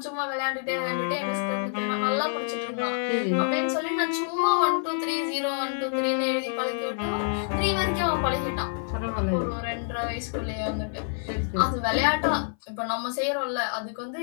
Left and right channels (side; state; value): right; silent; 57 dB below the other